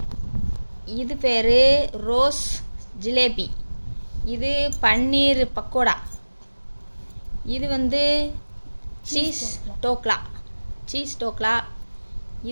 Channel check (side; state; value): both; inverted; correlation -1.00